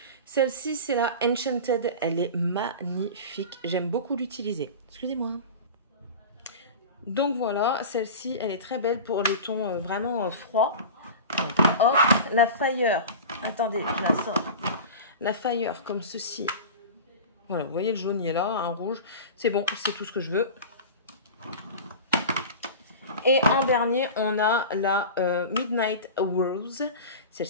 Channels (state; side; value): inverted; both; correlation -0.32